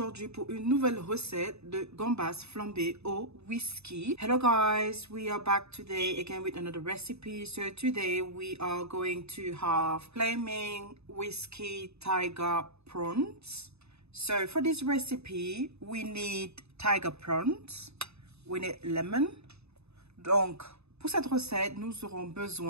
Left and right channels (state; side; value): late; left; 0.80 ms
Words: pour une nouvelle recette de gambas flambées au whisky. Hello guys, we are back today again with another recipe. So today we are going to have flaming whiskey tiger prawns. So for this recipe, we need tiger prawns, we need lemon. Donc pour cette recette, nous aurons